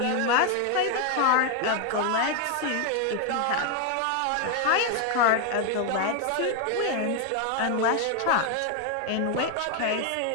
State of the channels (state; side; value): different; both; correlation 0.01